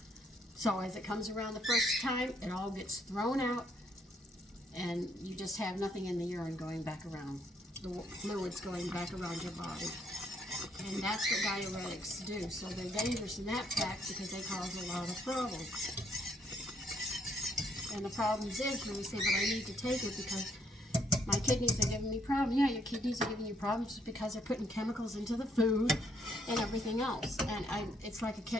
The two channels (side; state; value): both; normal; correlation 0.70